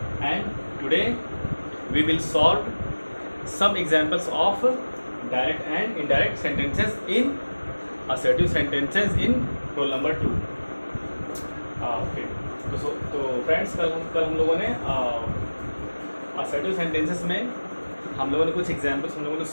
and today we will solve some examples of direct and indirect sentences in assertive sentences in roll number 2. Okay, तो friends कल हम लोगों ने assertive sentences में हम लोगों ने कुछ एग्जांपल्स हम लोगों ने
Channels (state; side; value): inverted; both; correlation -1.00